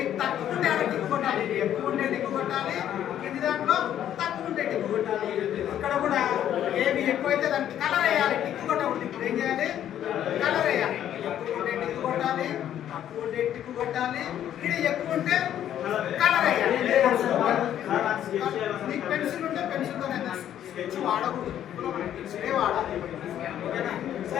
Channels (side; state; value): right; quieter; 10.8 dB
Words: తక్కువ ఉంటే అక్కడ టిక్కు కొట్టాలి. ఎక్కువ ఉంటే టిక్కు కొట్టాలి, కింది దాంట్లో తక్కువ ఉంటే టిక్కు కొట్టాలి. ఇక్కడ కూడా ఏవి ఎక్కువైతే దానికి కలర్ వేయాలి. టిక్కు కొట్టకూడదు. ఇప్పుడు ఏం చేయాలి? కలర్ వేయాలి. ఎక్కువ ఉంటే టిక్కు కొట్టాలి, తక్కువ ఉంటే టిక్కు కొట్టాలి. ఇక్కడ ఎక్కువ ఉంటే కలర్ వేయాలి. నీకు పెన్సిల్ ఉంటే పెన్సిల్తో స్కెచ్ వాడకూడదు, పెన్సిలే వాడాలి. ఓకేనా?